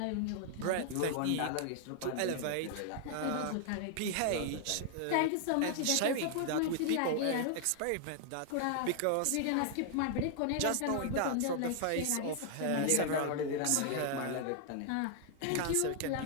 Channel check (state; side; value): different; both; correlation 0.00